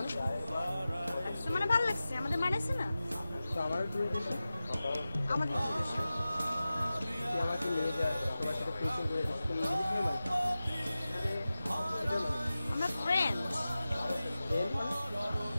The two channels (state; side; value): inverted; both; correlation -0.95